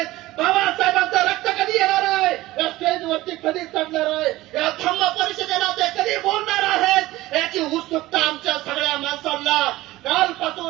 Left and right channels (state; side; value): quieter; left; 17.6 dB